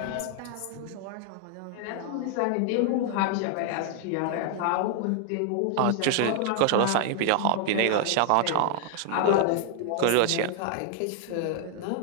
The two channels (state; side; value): different; both; correlation 0.00